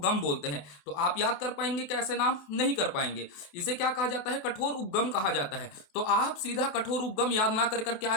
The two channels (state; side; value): late; right; 28 ms